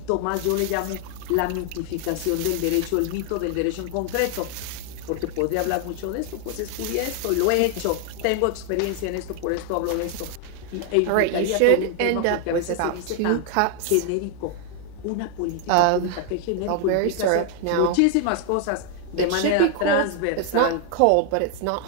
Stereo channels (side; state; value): both; different; correlation 0.00